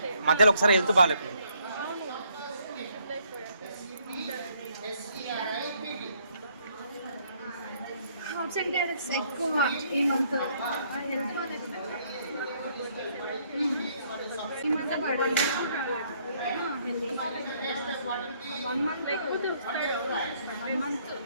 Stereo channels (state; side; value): inverted; both; correlation -0.68